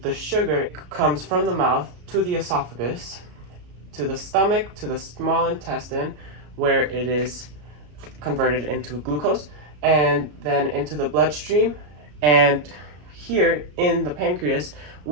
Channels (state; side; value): late; left; 33 ms